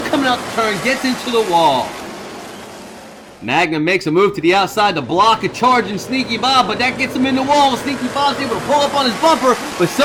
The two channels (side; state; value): both; identical; correlation 1.00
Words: coming out the turn, gets into the wall. Magnum makes a move to the outside to block a charging Sneaky Bob, but that gets him in the wall. Sneaky Bob's able to pull up on his bumper, but